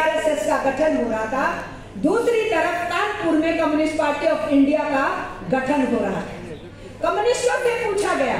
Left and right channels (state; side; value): identical; both; correlation 1.00